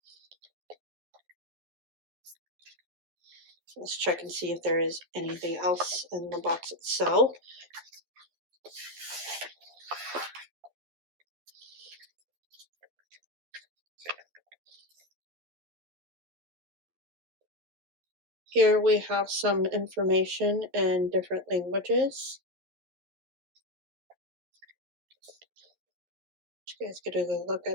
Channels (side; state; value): left; late; 11 ms